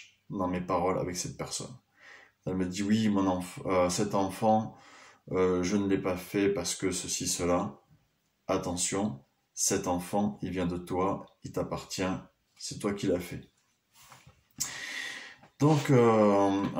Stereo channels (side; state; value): both; identical; correlation 1.00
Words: dans mes paroles avec cette personne. Elle me dit oui, cet enfant, je ne l'ai pas fait parce que ceci, cela. Attention, cet enfant, il vient de toi, il t'appartient, c'est toi qui l'as fait. Donc